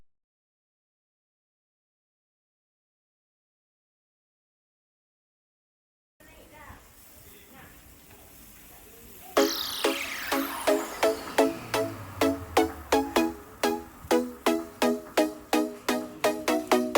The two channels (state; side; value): identical; both; correlation 1.00